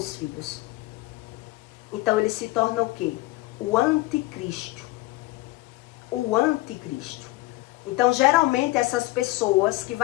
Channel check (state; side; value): quieter; right; 19.8 dB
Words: filhos. Então ele se torna o quê? O anticristo. O anticristo. Então, geralmente, essas pessoas que